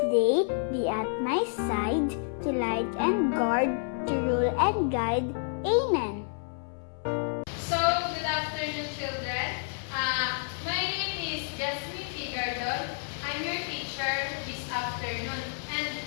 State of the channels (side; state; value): right; silent; 58 dB below the other